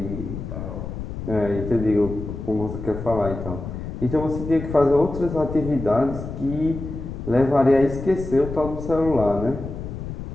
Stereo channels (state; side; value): noise; left; rumble, 8 dB below the sound